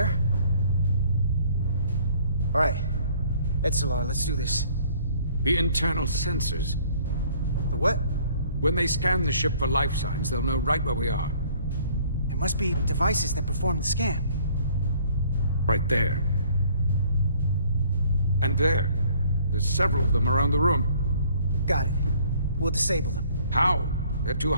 All right. Etzelar, let's do this. The internal sensors. The what? When they scan the ship for life signs, they'll know right where we are. There must be devices that perform the scan. Right there. And there. There's several of them around the room. Got it. We'll disable them. How? They're too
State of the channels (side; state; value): both; inverted; correlation -0.59